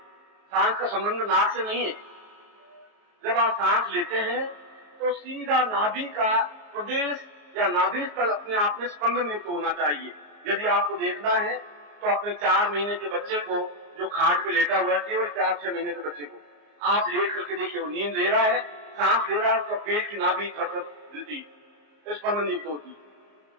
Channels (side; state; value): left; late; 34 ms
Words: सांस का संबंध नाक से नहीं है। जब आप सांस लेते हैं तो सीधा नाभि का प्रदेश या नाभि स्थल अपने आप में स्पंदन युक्त होना चाहिए। यदि आपको देखना है तो अपने 4 महीने के बच्चे को, जो खाट पे लेटा हुआ है, केवल 4-6 महीने के बच्चे को आप लेट करके देखिए, वो नींद ले रहा है, सांस ले रहा है, उसका पेट की नाभि थर-थर हिलती, स्पंदन युक्त होती,